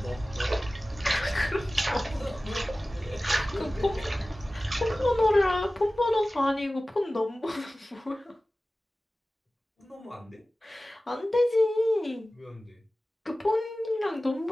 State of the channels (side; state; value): both; normal; correlation 0.96